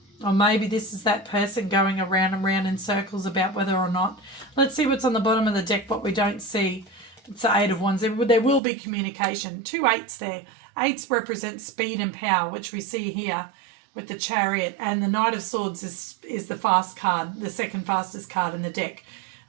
Or maybe this is that person going around and round in circles about whether or not. Let's see what's on the bottom of the deck, what we don't see. It's the Eight of Wands. There will be communication. 2 8s there. 8s represent speed and power, which we see here with the Chariot. And the Knight of Swords is the fast card, the second fastest card in the deck.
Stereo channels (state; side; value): drops out; left; at 8.6 s